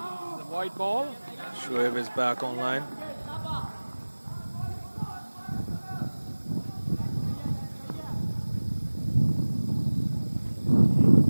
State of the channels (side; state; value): both; inverted; correlation -1.00